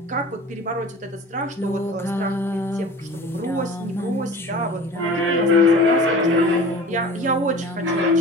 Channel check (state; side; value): normal; both; correlation 0.40